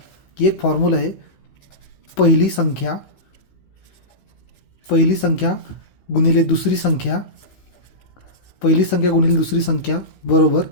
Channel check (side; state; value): right; late; 15 ms